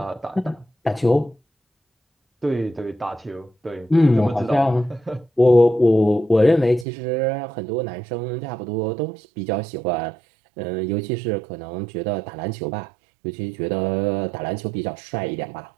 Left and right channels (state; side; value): drops out; left; at 6.9 s